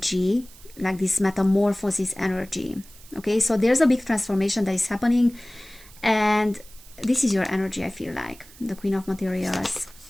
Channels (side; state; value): right; noise; hiss, 22 dB below the sound